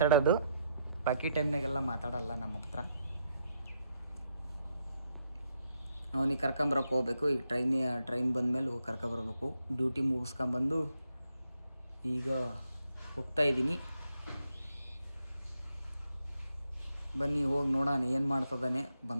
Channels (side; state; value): both; inverted; correlation -0.78